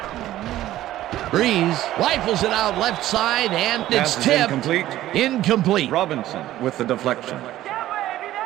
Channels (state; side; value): quieter; left; 14.2 dB